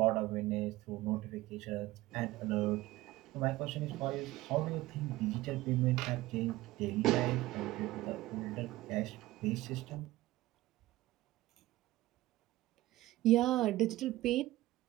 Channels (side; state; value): left; quieter; 17.4 dB